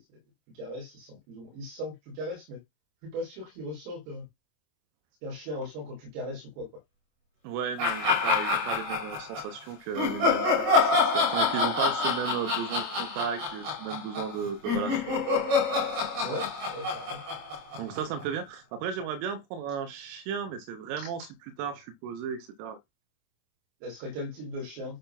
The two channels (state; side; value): late; left; 27 ms